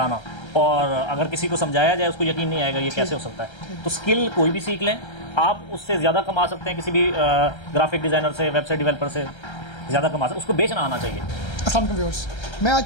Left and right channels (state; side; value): late; right; 1.3 ms